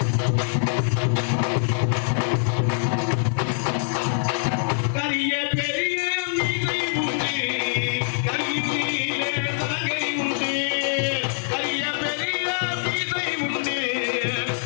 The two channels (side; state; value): right; silent; digital silence